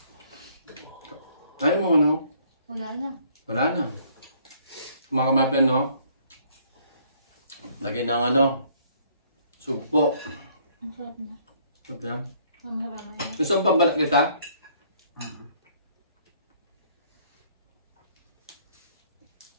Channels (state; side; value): inverted; both; correlation -0.63